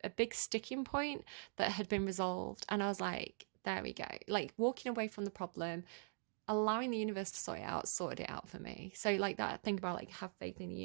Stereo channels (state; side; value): silent; left; digital silence